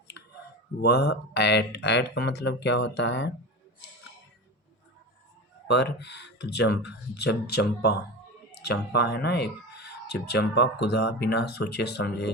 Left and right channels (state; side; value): normal; both; correlation 0.26